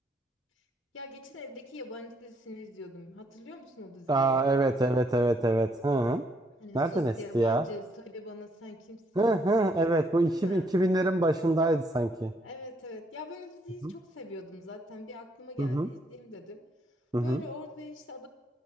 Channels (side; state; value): both; normal; correlation 0.71